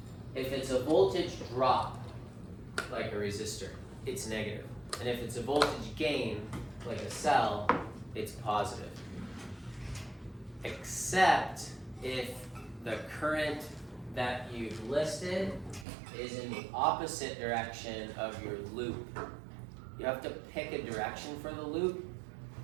it's a voltage drop, like a resistor, it's negative. And if it's a voltage gain, like a cell, it's positive. Except if the current that you've listed is in the opposite direction of your loop. You have to pick a direction for the loop.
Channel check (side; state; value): left; drops out; at 15.9 s